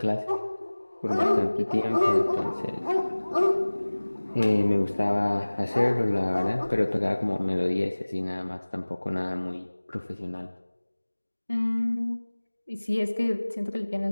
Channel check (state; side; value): inverted; both; correlation -1.00